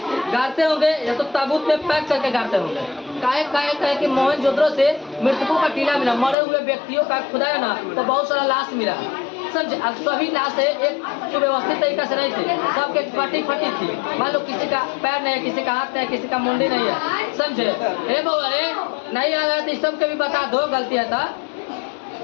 होंगे या तो ताबूत में पैक करके गाड़ते होंगे। काहे कि मोहनजोदड़ो से मृतकों का टीला मिला, मरे हुए व्यक्तियों का खुदाया ना तो बहुत सारा लाश मिला, समझे? अब सभी लाशें एक सुव्यवस्थित तरीका से नहीं थी, सबके कटी फटी थी। मान लो किसी का पैर नहीं है, किसी का हाथ नहीं है, किसी का मुंडी नहीं है, समझे? अरे बउआ रे नहीं आ रहा तो सबके भी बता दो, गलती है ना?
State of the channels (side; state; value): right; drops out; at 6.4 s